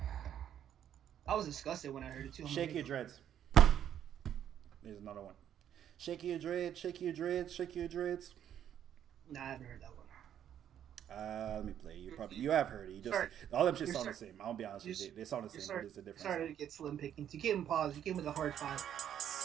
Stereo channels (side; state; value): left; quieter; 10.0 dB